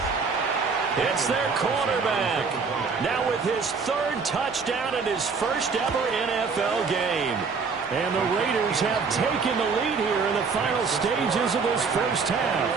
It's their quarterback. Now with his 3rd touchdown in his first ever NFL game. And the Raiders have taken the lead here in the final stages of this first half.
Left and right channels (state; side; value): quieter; left; 5.1 dB